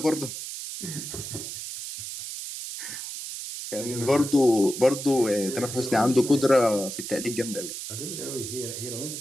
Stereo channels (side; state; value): right; noise; hiss, 8 dB below the sound